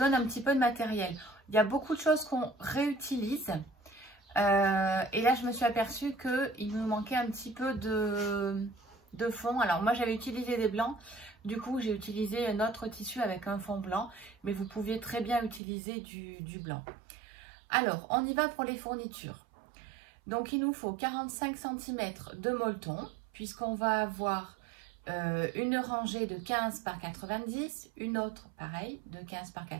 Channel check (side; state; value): left; drops out; at 15.6 s